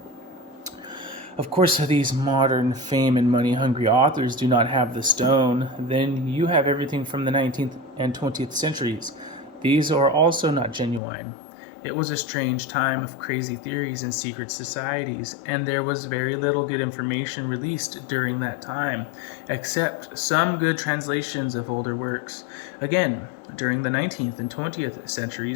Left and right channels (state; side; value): drops out; right; at 11.0 s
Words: Of course, these modern fame and money hungry authors do not have the stone. Then you have everything from the 19th and 20th centuries. These are also not genuine. It was a strange time of crazy theories and secret societies, and there was very little good information released during that time, except some good translations of older works. Again, during the 19th and 20th